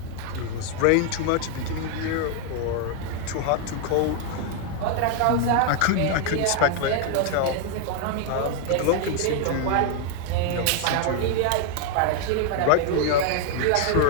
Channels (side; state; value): both; different; correlation 0.00